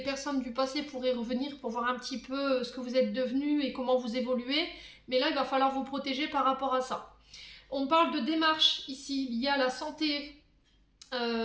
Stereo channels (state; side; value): identical; both; correlation 1.00